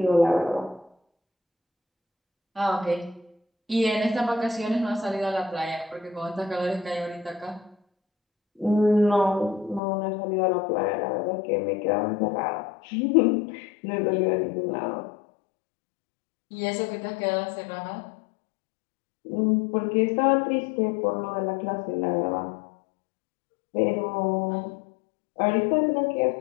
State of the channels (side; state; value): right; drops out; at 9.8 s